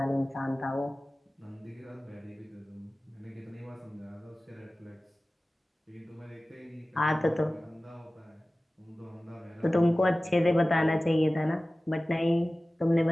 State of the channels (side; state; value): both; normal; correlation 0.97